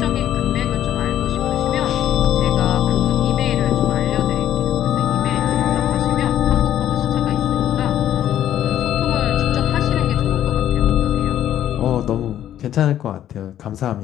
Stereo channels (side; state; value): right; quieter; 11.4 dB